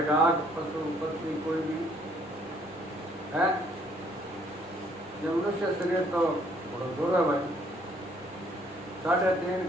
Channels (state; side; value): noise; right; rumble, 27 dB below the sound